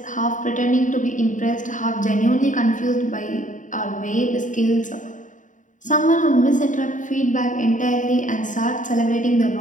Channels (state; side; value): late; right; 0.37 ms